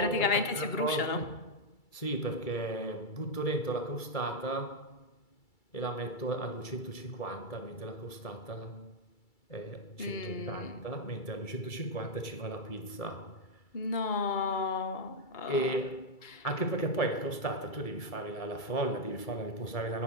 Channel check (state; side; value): late; right; 2.3 ms